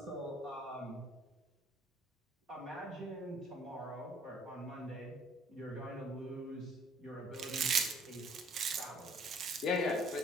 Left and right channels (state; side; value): normal; both; correlation 0.58